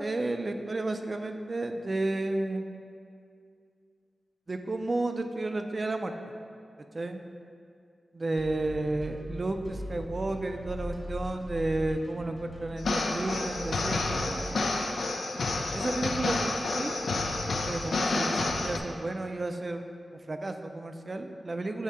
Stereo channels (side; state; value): both; normal; correlation 0.92